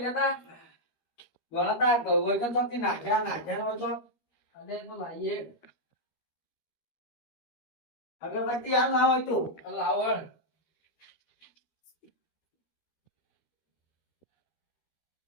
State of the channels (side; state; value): right; late; 13 ms